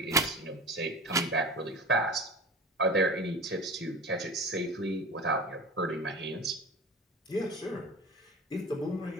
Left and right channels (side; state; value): both; normal; correlation 0.34